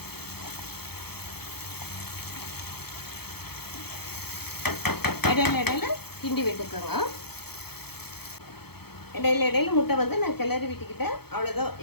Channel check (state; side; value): late; right; 0.96 ms